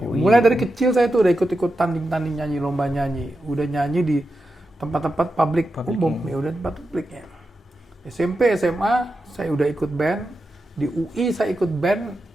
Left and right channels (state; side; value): normal; both; correlation 0.89